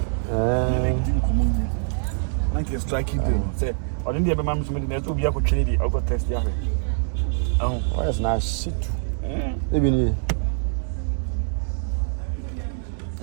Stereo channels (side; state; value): left; silent; 62 dB below the other